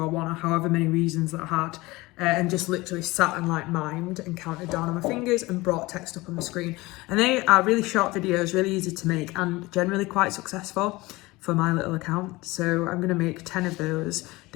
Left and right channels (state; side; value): quieter; right; 21.1 dB